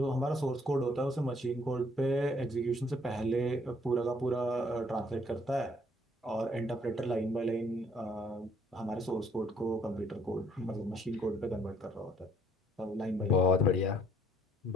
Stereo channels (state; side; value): normal; both; correlation 0.63